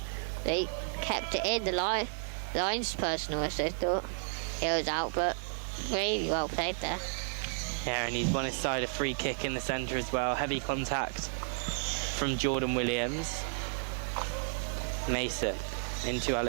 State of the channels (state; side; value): silent; left; digital silence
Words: They kept it in the linesperson. I thought he was out, but really well played there. Yeah, and he's won his side a free kick in the centre as well. Heavy contact from Jordan Williams. Mason into